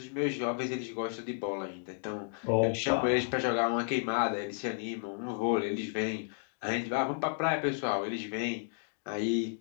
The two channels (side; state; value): right; silent; digital silence